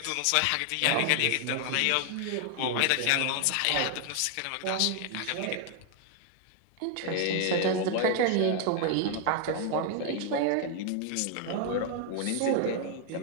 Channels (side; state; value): both; different; correlation 0.00